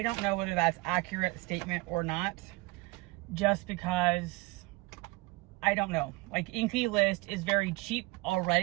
don't know whether that's accurate statement or not, just because I don't know. Like, Inky List is very cheap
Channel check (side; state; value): left; quieter; 23.1 dB